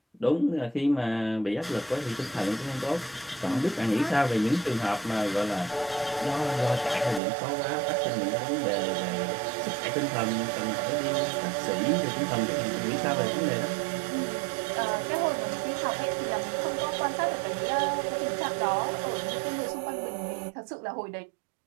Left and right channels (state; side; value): drops out; left; at 7.2 s